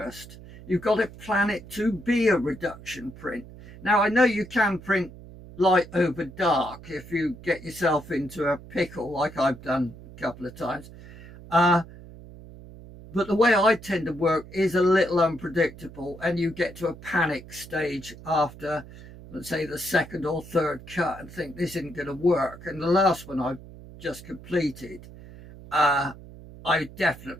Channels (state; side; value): noise; right; hum, 17 dB below the sound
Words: You've got to plan it to be a reduction print. Now, I know you can print light over dark if you get yourself into a pickle like I've done a couple of times. But the way I tend to work is a little unpredictable, and you get to a panic stage after, let's say, the second or third cut and think this isn't going to work. And the last one I've just completed, I